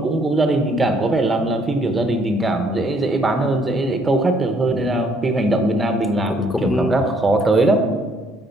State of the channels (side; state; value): both; normal; correlation 0.66